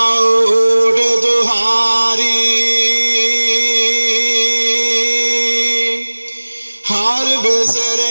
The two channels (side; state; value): both; inverted; correlation -1.00